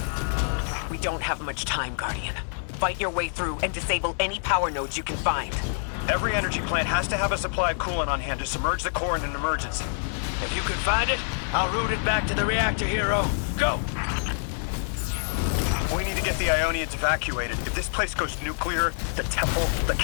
We don't have much time, Guardian. Fight your way through and disable any power nodes you can find. Every energy plant has to have a supply of coolant on hand to submerge the core in an emergency. If you can find it, I'll route it back to the reactor, Hero. Go! We need to get the Ionians evacuated. If this place goes nuclear, the temple, the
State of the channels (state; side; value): silent; right; digital silence